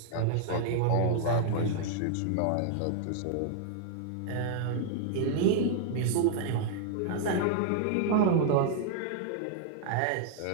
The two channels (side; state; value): both; different; correlation -0.01